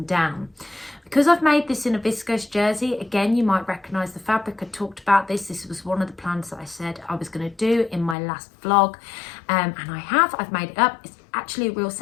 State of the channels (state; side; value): drops out; right; at 8.2 s